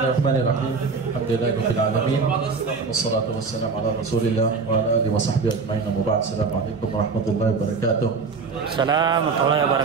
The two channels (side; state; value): left; quieter; 4.8 dB